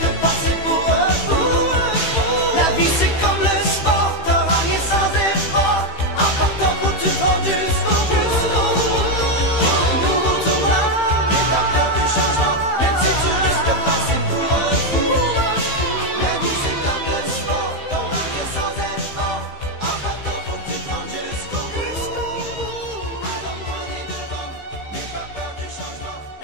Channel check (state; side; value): late; right; 15 ms